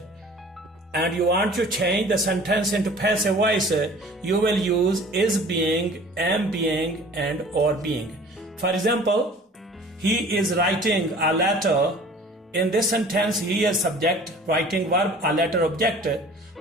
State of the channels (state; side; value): normal; both; correlation 0.47